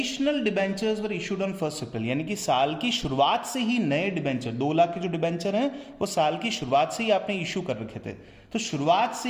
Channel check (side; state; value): both; identical; correlation 1.00